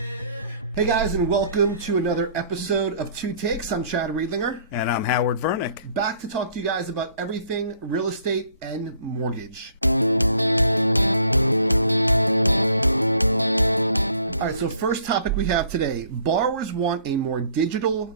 Hey guys, and welcome to another episode of Two Takes. I'm Chad Riedlinger. And I'm Howard Vernick. Back to talk to you guys about everything real estate and mortgage. All right, so first topic we have today. Borrowers want a more digital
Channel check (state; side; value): inverted; both; correlation -0.57